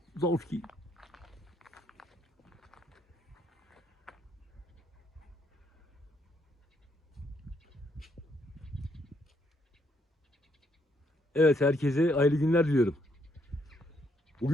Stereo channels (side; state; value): both; normal; correlation 0.73